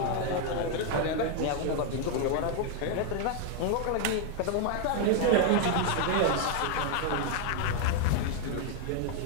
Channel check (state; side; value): different; both; correlation 0.00